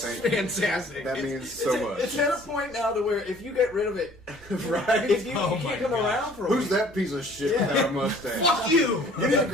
Thank you. fantastic. That It's- means so much. It's at a point now to where if you get rid of it, Right? if you, Oh you my can't come gosh. around for a Who's week. that piece of shit Yeah. without a mustache? Fuck you! You need to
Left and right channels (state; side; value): normal; both; correlation 0.54